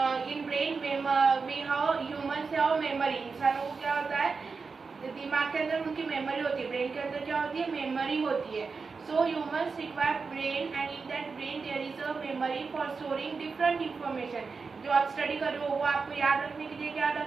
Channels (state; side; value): quieter; left; 4.8 dB